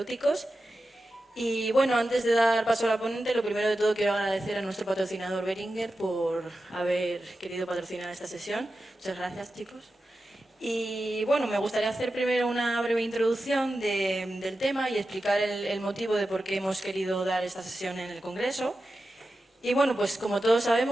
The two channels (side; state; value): both; normal; correlation 0.92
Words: Y bueno, antes de dar paso a la ponente, lo primero de todo quiero agradecer a nuestro patrocinador Boehringer por haber querido patrocinar esta sesión. Muchas gracias, chicos. Y bueno, me gustaría hacer primero una breve introducción del tema y explicar el motivo de por qué hemos querido dar esta sesión en el Congreso. Y bueno, pues como todos